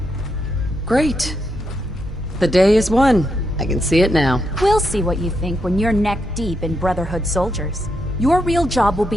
great. The day is won. I can see it now. We'll see what you think when you're neck deep in Brotherhood soldiers. Your real job will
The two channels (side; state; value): both; normal; correlation 0.81